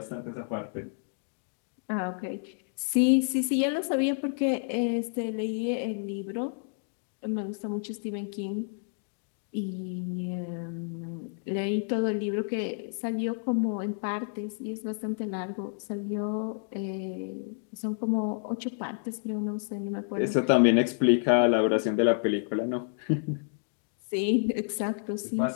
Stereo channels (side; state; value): right; silent; digital silence